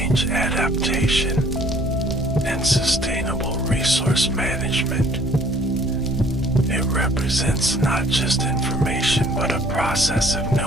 adaptation, and sustainable resource management. It represents not just information but a process of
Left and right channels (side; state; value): both; normal; correlation 0.57